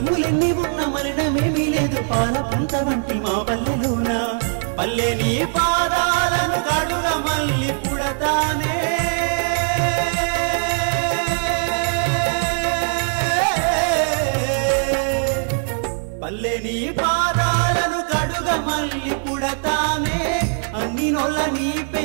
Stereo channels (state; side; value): silent; left; digital silence